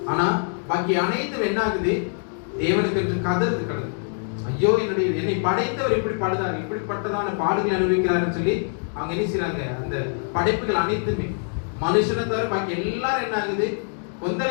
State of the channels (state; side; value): silent; right; 62 dB below the other